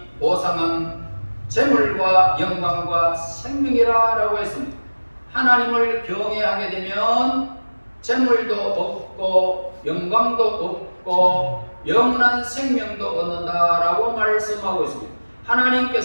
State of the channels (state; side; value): inverted; both; correlation -1.00